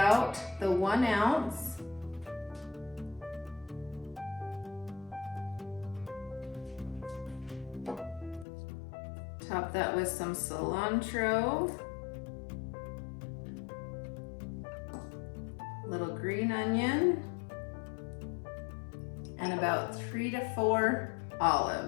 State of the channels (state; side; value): drops out; right; at 8.5 s